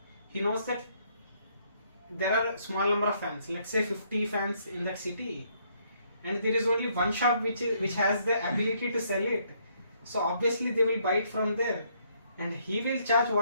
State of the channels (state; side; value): inverted; both; correlation -0.70